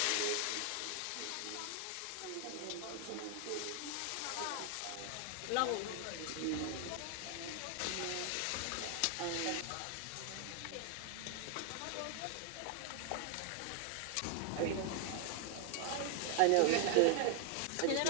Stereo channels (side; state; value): both; different; correlation 0.00